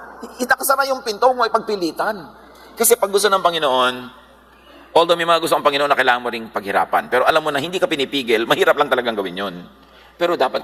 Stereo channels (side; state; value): both; identical; correlation 1.00